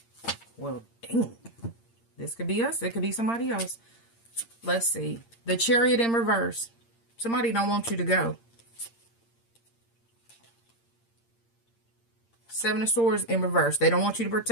Well, dang. This could be us. It could be somebody else. Let's see. The Chariot in reverse. Somebody don't want you to go. Seven of Swords in reverse. They don't want you to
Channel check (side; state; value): right; late; 8.7 ms